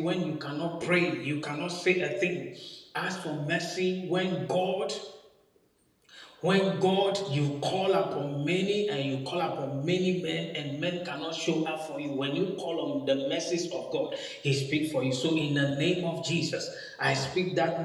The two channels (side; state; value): both; identical; correlation 1.00